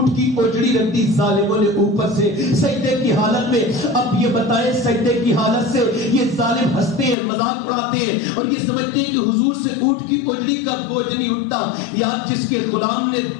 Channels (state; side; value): drops out; right; at 7.2 s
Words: کی اوجڑی رکھ دی ظالموں نے اوپر سے سجدے کی حالت میں. اب یہ بتائیں سجدے کی حالت سے یہ ظالم ہنستے ہیں مذاق اڑاتے ہیں اور یہ سمجھتے ہیں کہ حضور سے اونٹ کی اوجڑی کا بوجھ نہیں اٹھتا. یا جس کے غلام نے